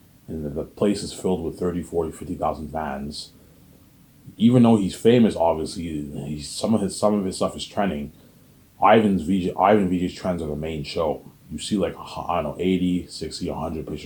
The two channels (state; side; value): identical; both; correlation 1.00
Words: and the place is filled with 30, 40, 50,000 fans, even though he's famous, obviously, some of his stuff is trending. Ivan VJ's trends are the main show. You see like I don't know 80, 60, 100